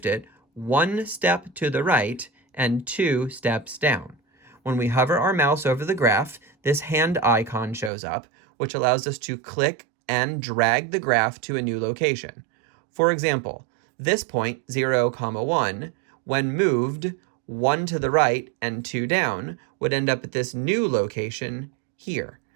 it 1 step to the right and 2 steps down. When we hover our mouse over the graph, this hand icon shows up, which allows us to click and drag the graph to a new location. For example, this point, 0, 1, when moved 1 to the right and 2 down, would end up at this new location here,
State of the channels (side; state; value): left; drops out; at 7.9 s